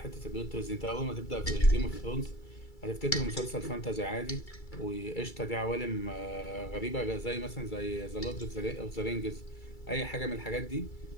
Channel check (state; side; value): late; right; 2.3 ms